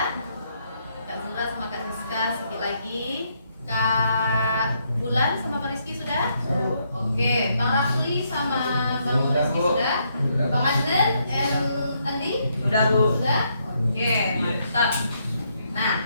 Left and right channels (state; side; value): inverted; both; correlation -0.75